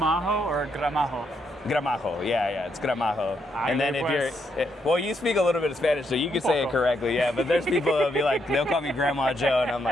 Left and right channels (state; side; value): normal; both; correlation 0.77